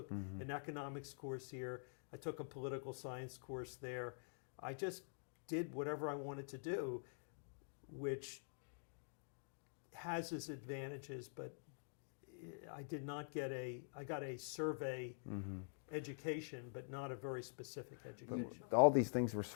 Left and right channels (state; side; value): silent; right; digital silence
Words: an economics course here. I took a political science course there. I just did whatever I wanted to do, which has its advantages, but I did not get I got a survey education, but not a very specific education. All these things were